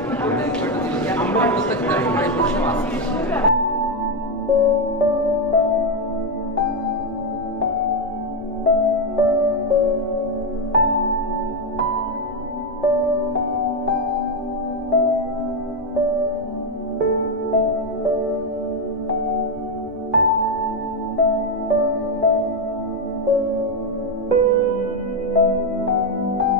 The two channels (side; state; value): both; normal; correlation 0.06